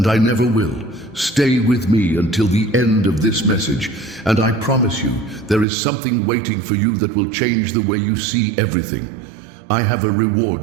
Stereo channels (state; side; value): drops out; left; at 5.7 s